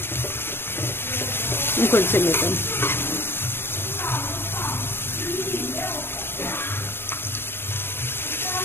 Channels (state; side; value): late; right; 0.11 ms